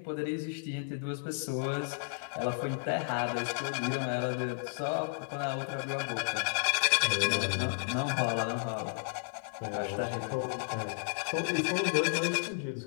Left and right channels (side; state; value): right; silent; digital silence